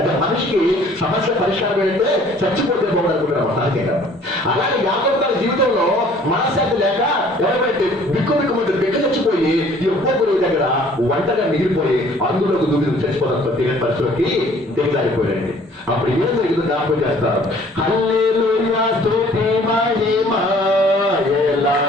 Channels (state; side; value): normal; both; correlation 0.55